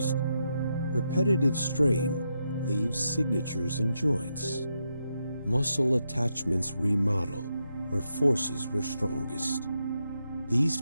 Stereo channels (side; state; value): both; inverted; correlation -0.83